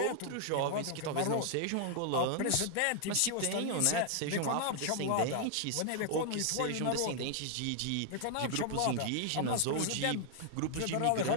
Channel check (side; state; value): both; different; correlation 0.00